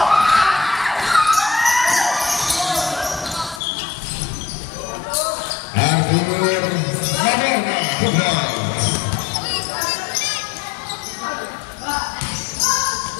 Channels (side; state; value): right; drops out; at 3.6 s